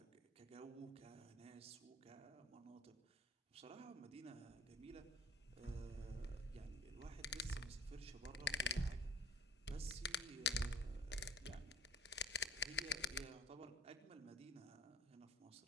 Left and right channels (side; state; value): both; normal; correlation 0.50